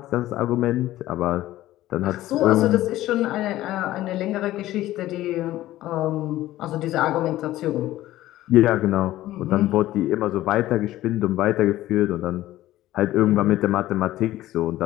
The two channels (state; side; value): quieter; right; 15.2 dB